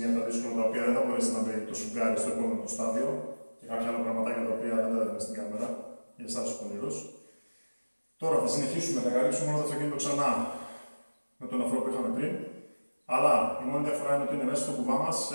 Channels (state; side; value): inverted; both; correlation -1.00